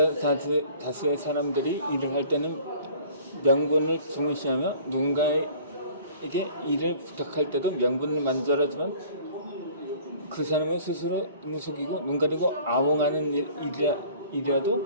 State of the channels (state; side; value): inverted; both; correlation -0.50